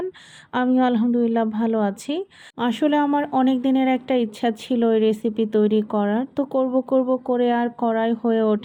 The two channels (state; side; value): identical; both; correlation 1.00